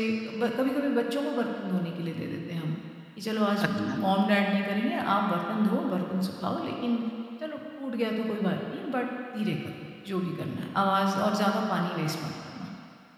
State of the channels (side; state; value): both; identical; correlation 1.00